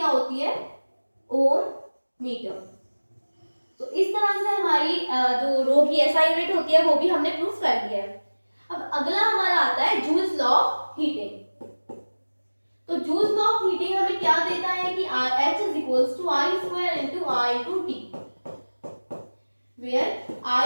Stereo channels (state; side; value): inverted; both; correlation -1.00